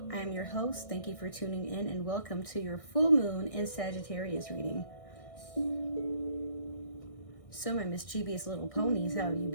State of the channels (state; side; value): late; right; 1.6 ms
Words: I am your host. Thank you for tuning in and welcome to your full moon in Sagittarius reading. So my mischievous little ponies, how have you